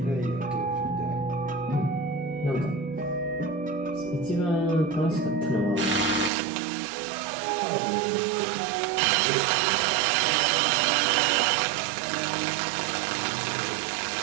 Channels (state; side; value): drops out; left; at 6.3 s